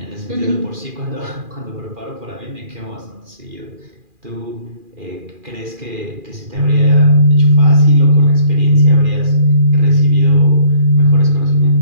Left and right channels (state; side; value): late; left; 2.4 ms